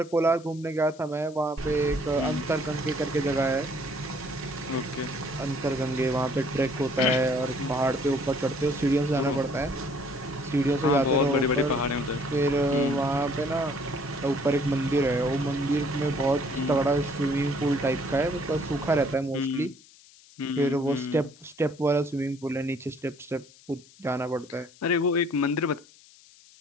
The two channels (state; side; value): noise; left; hiss, 25 dB below the sound